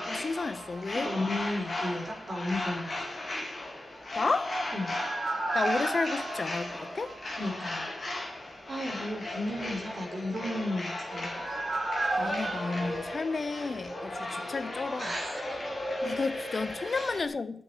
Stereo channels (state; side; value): normal; both; correlation 0.92